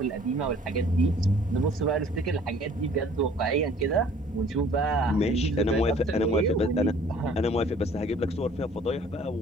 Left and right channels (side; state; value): both; normal; correlation 0.54